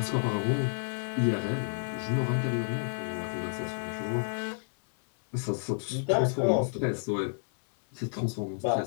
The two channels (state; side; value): silent; right; 58 dB below the other